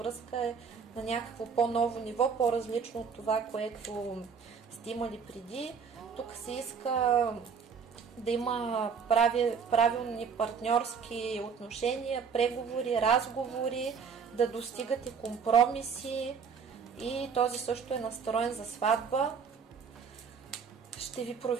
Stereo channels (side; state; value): left; quieter; 6.2 dB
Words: е на някакво по-ново ниво, по-различно от това, което сте имали преди. Тук се иска да има правилни партньорски отношения, преговори, разговори, да достигате компромиси и този също е настроен за сватба. Ще ви